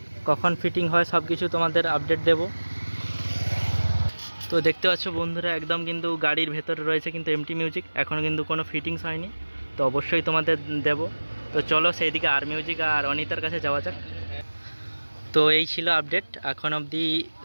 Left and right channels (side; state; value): both; inverted; correlation -1.00